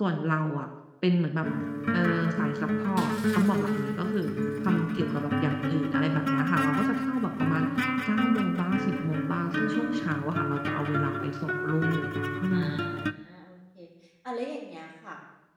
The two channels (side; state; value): both; identical; correlation 1.00